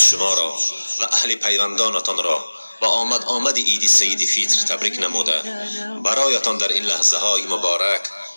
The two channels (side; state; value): both; inverted; correlation -1.00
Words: شما را و اهل پیوندانتان را با آمد عید سید فیتر تبریک نموده برایتان در این لحظه های مبارک